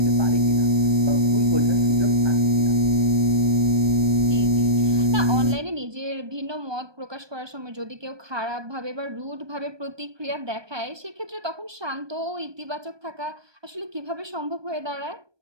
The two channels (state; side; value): late; left; 1.2 ms